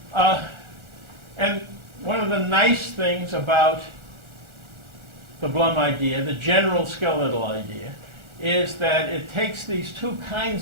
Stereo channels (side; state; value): left; late; 1.4 ms